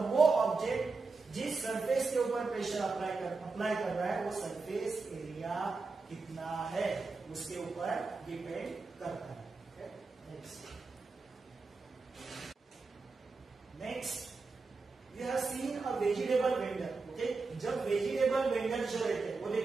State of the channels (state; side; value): quieter; left; 4.1 dB